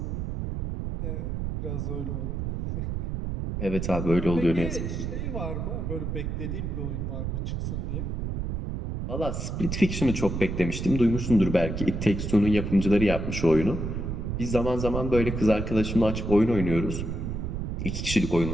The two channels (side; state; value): right; noise; rumble, 3 dB below the sound